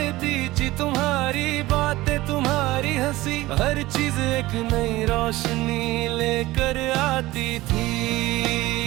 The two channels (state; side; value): quieter; left; 18.4 dB